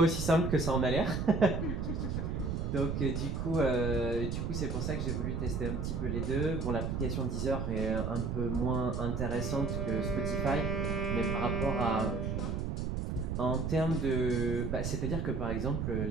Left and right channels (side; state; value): right; noise; rumble, 2 dB below the sound